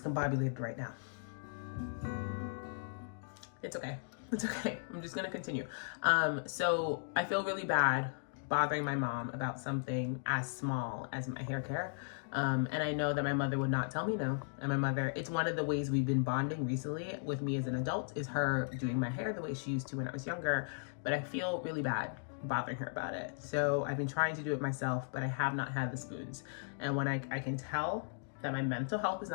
right now. It's okay. It's okay. I'm just going to continue. So I feel really bad bothering my mom about something as small as my hair care. And I know that my mother would not tell me no. And my mother, it's one of the ways we've been bonding recently with me as an adult is her doing my hair the way she used to when I was younger. But I feel really bad bothering her about it. So I've been trying to do it myself, but I have not had the spoons. And when I can tell that my mental health is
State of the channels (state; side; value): silent; right; digital silence